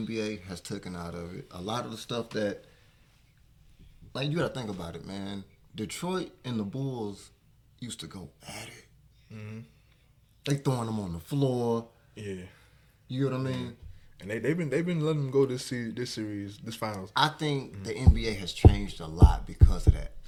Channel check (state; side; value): identical; both; correlation 1.00